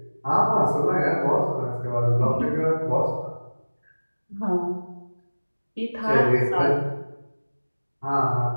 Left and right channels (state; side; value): inverted; both; correlation -1.00